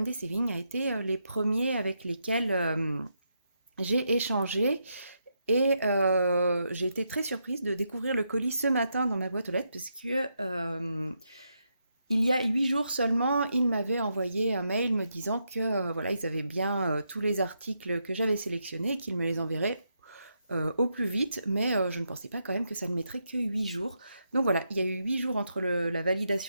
Day Saving a été les premiers avec lesquels j'ai échangé. Et j'ai été très surprise de découvrir le colis ce matin dans ma boîte aux lettres parce que il y a 8 jours seulement, ils m'avaient envoyé un mail me disant que voilà, ils avaient bien tous les articles que j'avais sélectionnés et qu'ils me les enverraient au plus vite, mais je ne pensais pas quand même que ça ne mettrait que 8 jours. Donc voilà, il y a eu 8 jours entre la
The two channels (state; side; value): inverted; both; correlation -0.82